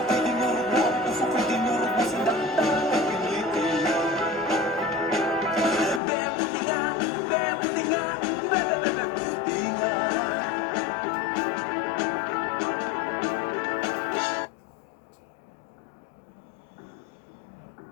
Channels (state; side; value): drops out; right; at 6.0 s